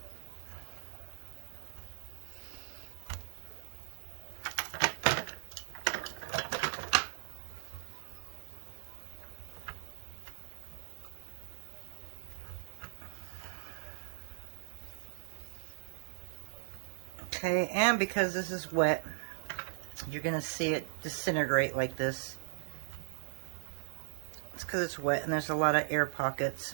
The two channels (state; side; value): silent; left; 52 dB below the other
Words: Okay, and because this is wet, you're going to see it disintegrate like this. It's because it's wet and there's a lot of air pockets.